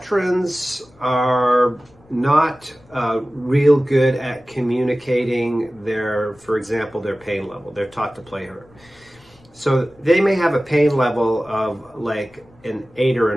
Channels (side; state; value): left; noise; rumble, 29 dB below the sound